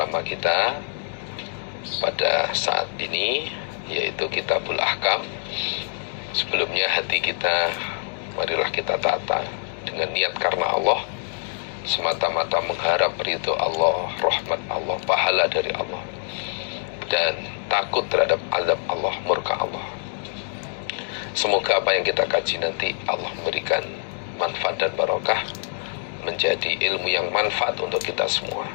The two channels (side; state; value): right; silent; digital silence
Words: kita pada saat ini, yaitu Kitabul Ahkam. Sebelumnya hati kita, marilah kita tata dengan niat karena Allah, semata-mata mengharap ridho Allah, rahmat Allah, pahala dari Allah, dan takut terhadap azab Allah, murka Allah. Semoga apa yang kita kaji nanti Allah memberikan manfaat dan barokah, menjadi ilmu yang manfaat untuk kita semua.